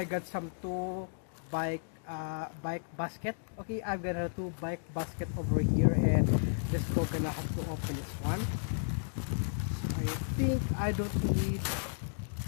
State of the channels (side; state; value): right; silent; digital silence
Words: got some two bike basket. Okay, I've got a two bike basket over here, and let's go. Gonna have to open this one. So I think I don't need